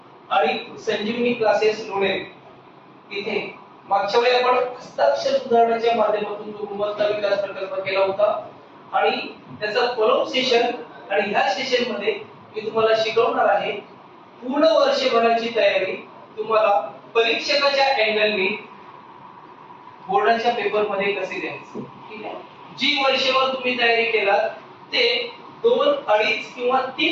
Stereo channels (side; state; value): both; identical; correlation 1.00